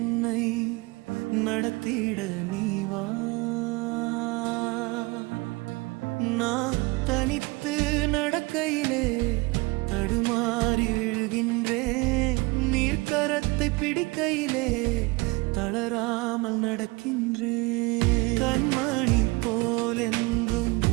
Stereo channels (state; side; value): quieter; left; 24.9 dB